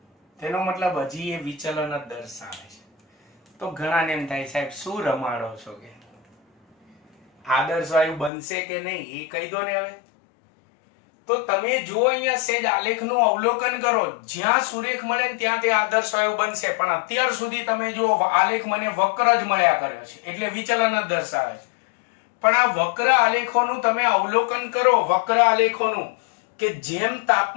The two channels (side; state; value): right; drops out; at 8.3 s